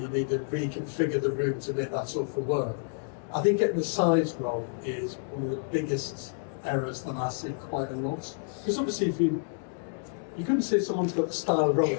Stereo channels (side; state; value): right; silent; digital silence